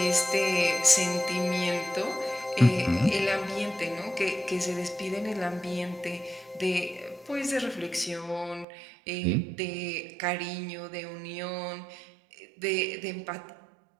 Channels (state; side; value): drops out; left; at 8.7 s